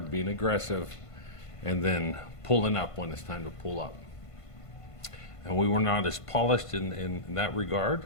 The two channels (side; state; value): right; late; 1.5 ms